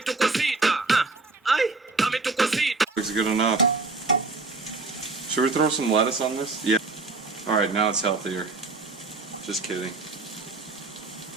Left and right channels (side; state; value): left; quieter; 3.7 dB